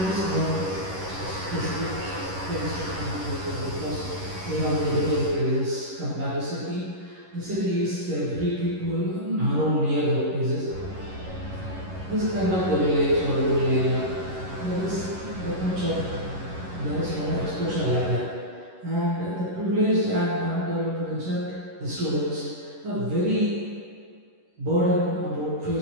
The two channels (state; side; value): late; left; 11 ms